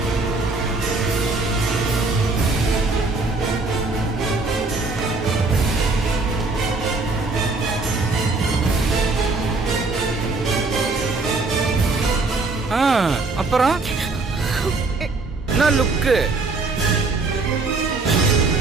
அப்புறம் என்ன லுக்கு?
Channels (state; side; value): quieter; left; 3.6 dB